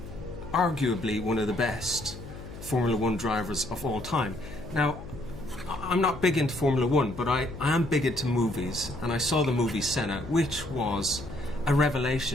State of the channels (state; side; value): noise; left; hum, 13 dB below the sound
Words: arguably one of the best Formula One drivers of all time. Now, I'm not big into Formula One, but I am big into movies, and I saw the movie Senna, which was a